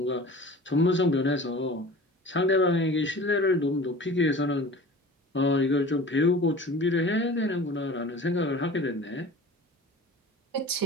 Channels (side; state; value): both; normal; correlation 0.40